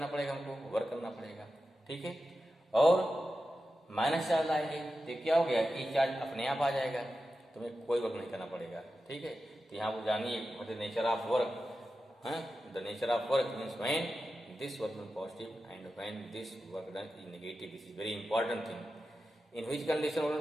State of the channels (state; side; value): normal; both; correlation 0.92